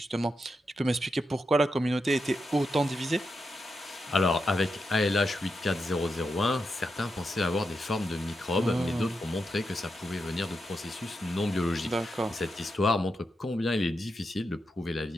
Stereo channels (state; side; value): normal; both; correlation 0.86